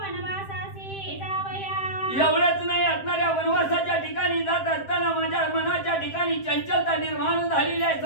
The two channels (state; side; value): late; right; 7.6 ms